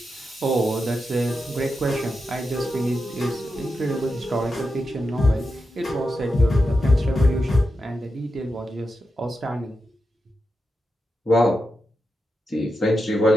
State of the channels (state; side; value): normal; both; correlation 0.88